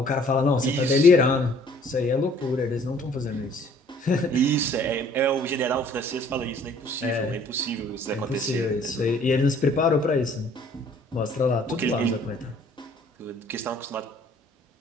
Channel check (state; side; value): normal; both; correlation 0.57